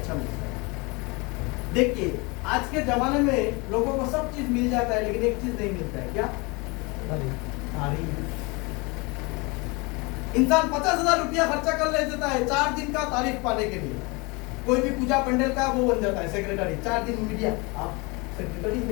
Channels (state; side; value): quieter; right; 27.4 dB